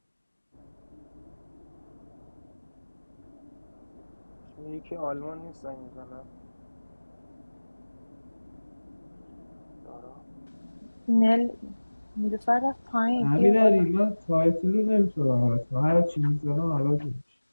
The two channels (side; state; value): both; inverted; correlation -1.00